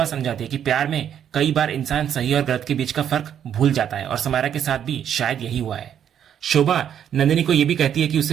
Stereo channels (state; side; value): quieter; left; 9.3 dB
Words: समझाती है कि प्यार में कई बार इंसान सही और गलत के बीच का फर्क भूल जाता है और समायरा के साथ भी शायद यही हुआ है। शोभा नंदिनी को यह भी कहती है कि उसे